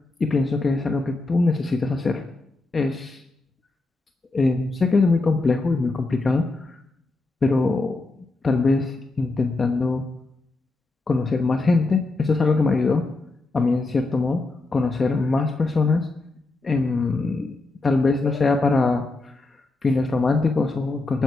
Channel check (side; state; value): right; quieter; 3.2 dB